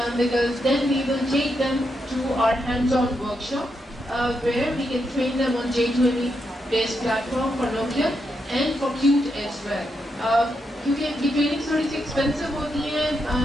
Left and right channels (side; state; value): both; normal; correlation 0.83